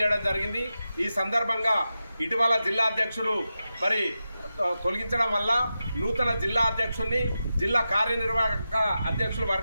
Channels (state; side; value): inverted; both; correlation -0.91